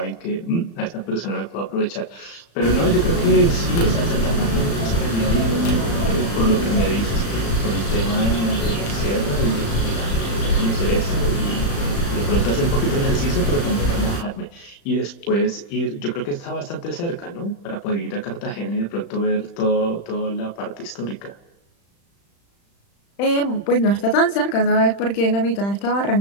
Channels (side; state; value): right; late; 35 ms